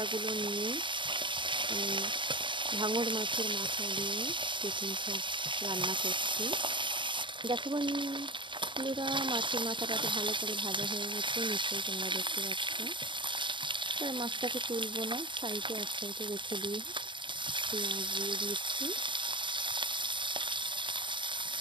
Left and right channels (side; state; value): left; late; 0.23 ms